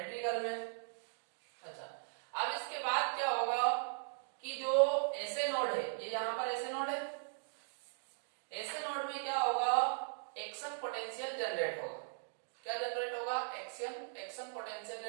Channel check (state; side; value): silent; left; digital silence